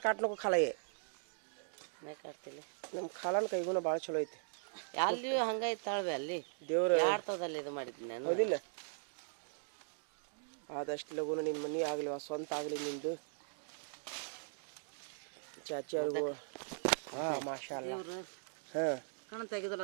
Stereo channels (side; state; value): left; silent; digital silence